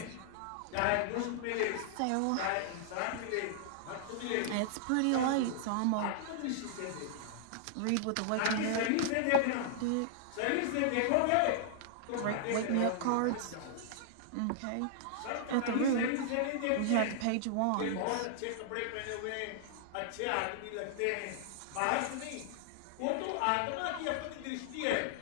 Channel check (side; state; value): both; different; correlation -0.01